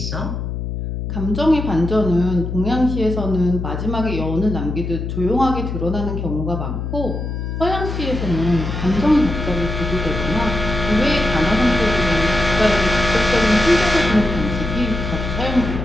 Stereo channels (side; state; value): left; noise; hum, 4 dB below the sound